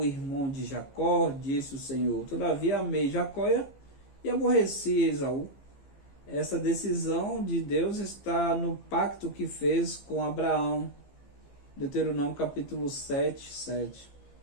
irmão de Jacó, disse o Senhor. Todavia amei Jacó e aborreci Esaú. Essa decisão de Deus está no pacto que fez com Abraão. Deuteronômio capítulo 7, 7.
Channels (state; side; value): late; right; 15 ms